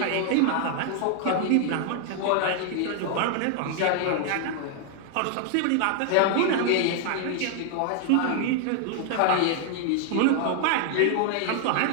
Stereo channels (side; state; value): both; different; correlation 0.00